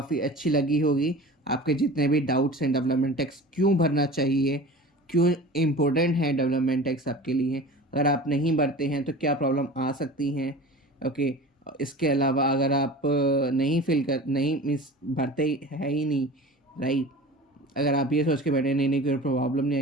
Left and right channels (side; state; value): both; normal; correlation 0.37